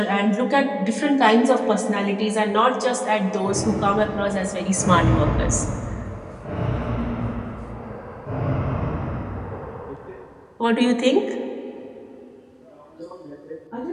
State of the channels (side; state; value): both; identical; correlation 1.00